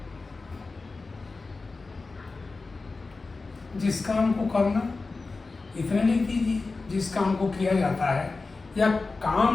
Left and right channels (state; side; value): quieter; right; 3.8 dB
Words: जिस काम को करना, इतने लिख दीजिए, जिस काम को किया जाता है, या